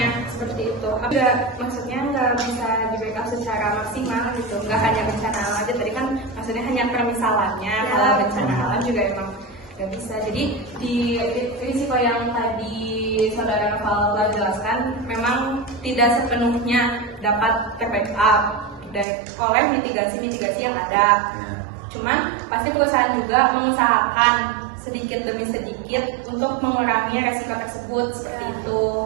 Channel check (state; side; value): drops out; left; at 19.1 s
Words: seperti itu. Maksudnya nggak bisa diberikan secara maksimal gitu, nggak hanya bencana alam aja. Tadi kan maksudnya hanya permisalannya, kalau bencana alam juga emang nggak bisa. Jadi di risiko yang tadi saudara Noval jelaskan memang tidak sepenuhnya dapat terbackup oleh mitigasi yang ada. Cuman pasti perusahaan juga mengusahakan sedikit demi sedikit untuk mengurangi resiko tersebut seperti itu.